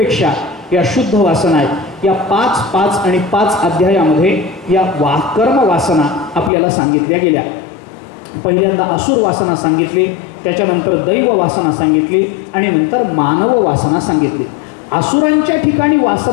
या शुद्ध वासना आहेत. या 5 आणि 5 अध्यायामध्ये या कर्म वासना आपल्याला सांगितल्या गेल्या. पहिल्यांदा असुर वासना सांगितली, त्याच्यानंतर दैव वासना सांगितली आणि नंतर मानव वासना सांगितली. असुरांच्या ठिकाणी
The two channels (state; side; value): drops out; right; at 6.5 s